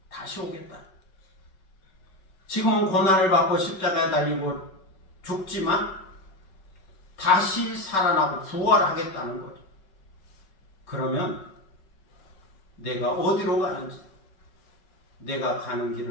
다시 오겠다. 지금은 고난을 받고 십자가에 달리고 죽지만 다시 살아나고 부활하겠다는 거죠. 그러면 내가 어디로 가는지 내가 가는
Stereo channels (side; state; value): right; late; 5.3 ms